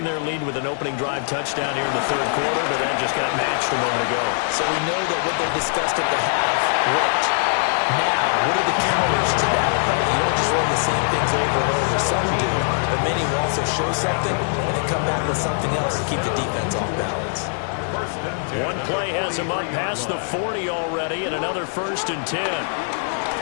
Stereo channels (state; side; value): silent; right; 57 dB below the other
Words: their lead with an opening drive touchdown here in the 3rd quarter, but that just got matched a moment ago. So we know that what they discussed at the half worked. Now, what are the counters to that, right? You don't just run the same things over and over. Some do, but many will also show something and then come back with something else to keep the defense off balance. One play has him up past the 40 already, and another 1st and 10.